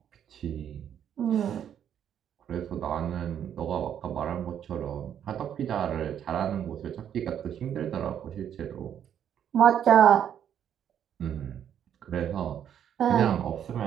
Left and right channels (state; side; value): quieter; left; 9.4 dB